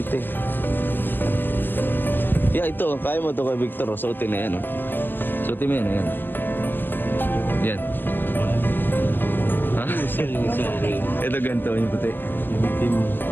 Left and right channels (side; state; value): right; late; 0.092 ms